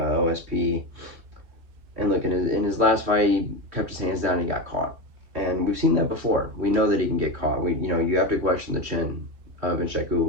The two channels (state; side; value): late; left; 3.1 ms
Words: And look, in his last fight, he kept his hands down and he got caught. And we've seen that before. We know that he can get caught. You have to question the chin of